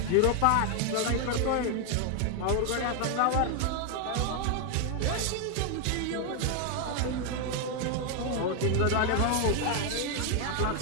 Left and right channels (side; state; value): both; different; correlation 0.01